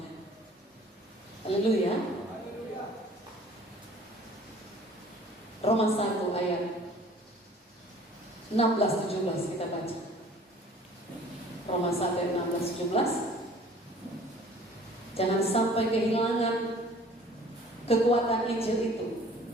Haleluya. Roma 1 ayat 16-17 kita baca. Roma 1 ayat 16-17. Jangan sampai kehilangan kekuatan Injil itu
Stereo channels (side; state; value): both; normal; correlation 0.51